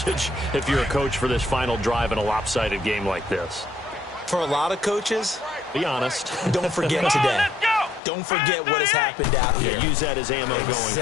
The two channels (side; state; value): right; drops out; at 8.0 s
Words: if you're a coach for this final drive in a lopsided game like this? For a lot of coaches, be honest. Don't forget today. Don't forget what has happened out here. Yeah, use that as ammo going forward.